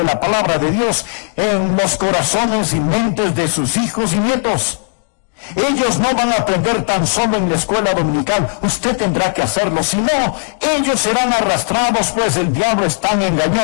la palabra de Dios en los corazones y mentes de sus hijos y nietos. Ellos no van a aprender tan solo en la escuela dominical, usted tendrá que hacerlo, si no, ellos serán arrastrados, pues el diablo es tan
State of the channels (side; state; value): right; silent; digital silence